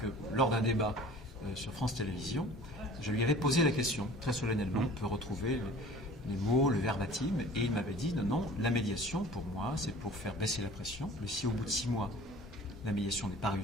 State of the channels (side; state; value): both; normal; correlation 0.46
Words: lors d'un débat sur France Télévisions, je lui avais posé la question, très solennellement. On peut retrouver les mots, le verbatim, et il m'avait dit non, la médiation, pour moi, c'est pour faire baisser la pression. Mais si au bout de 6 mois, la médiation n'est pas